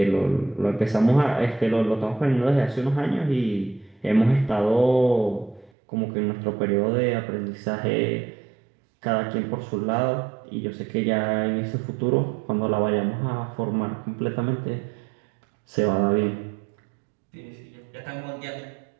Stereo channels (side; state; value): left; drops out; at 5.7 s